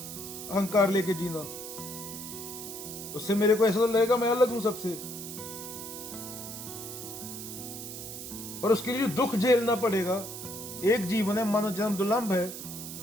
लेके जीना, उससे मेरे को ऐसा लगेगा मैं अलग हूं सबसे, पर उसके लिए दुख झेलना पड़ेगा। एक जीवन है, मानव जन्म दुर्लभ है,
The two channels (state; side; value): noise; right; hiss, 9 dB below the sound